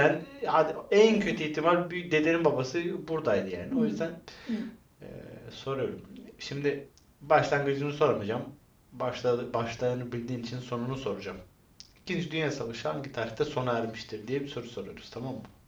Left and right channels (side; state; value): both; identical; correlation 1.00